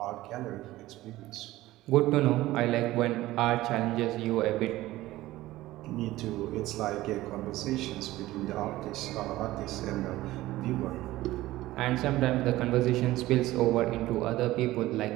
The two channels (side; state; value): left; quieter; 16.8 dB